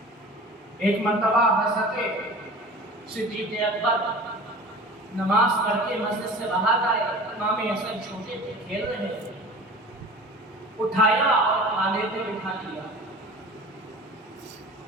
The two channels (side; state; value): both; normal; correlation 0.40